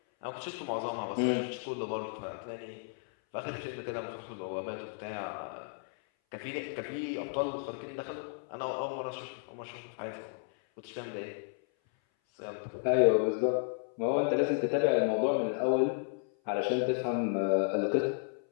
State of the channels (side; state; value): right; silent; 56 dB below the other